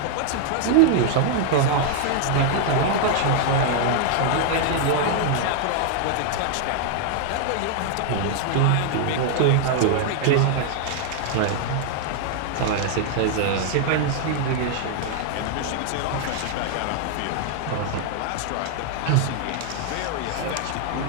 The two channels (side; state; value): both; different; correlation 0.00